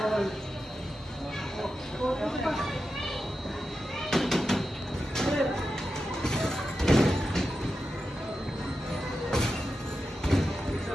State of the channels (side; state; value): both; normal; correlation 0.90